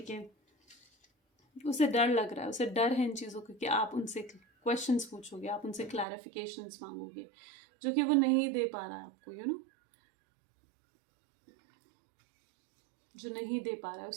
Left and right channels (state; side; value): drops out; left; at 6.1 s